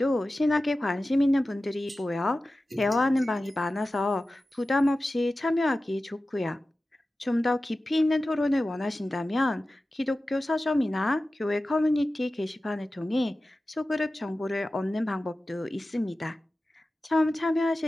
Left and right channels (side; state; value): both; normal; correlation 0.95